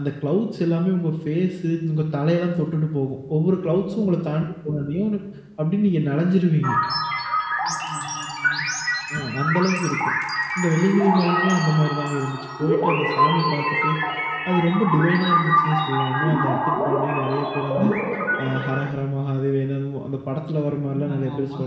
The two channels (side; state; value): both; identical; correlation 1.00